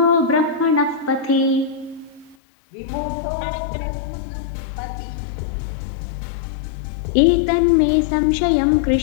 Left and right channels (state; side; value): drops out; right; at 2.4 s